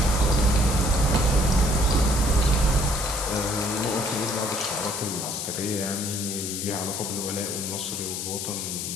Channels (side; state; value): left; noise; hiss, 4 dB below the sound